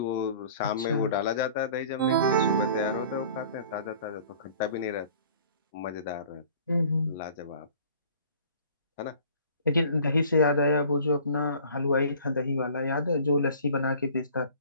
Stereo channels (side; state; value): both; inverted; correlation -0.48